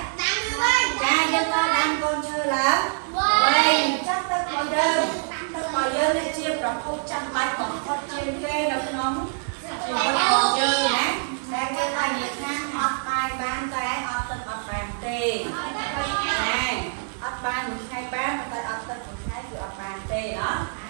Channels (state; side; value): silent; left; 58 dB below the other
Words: ចាយើងក៏ដាំកូនឈើឡើងវិញចាប់ទឹករបស់យើងនេះជាប្រភពចាំបាច់បំផុតជាងគេនៅក្នុងជីវិតរបស់យើងណាតែគេថានិយាយថាអត់បាយបានតែអត់ទឹកអត់បានទេណាអត់បានមួយថ្ងៃបានតែអត់ទឹកមួយថ្ងៃគឺអត់បានទេណា